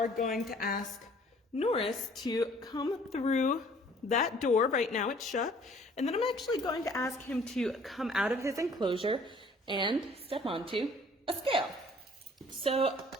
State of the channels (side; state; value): both; normal; correlation 0.55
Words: going to ask Norris to come through that door. Right now it's shut. And then I'm actually going to ask him to come out of his enclosure and step onto a scale. So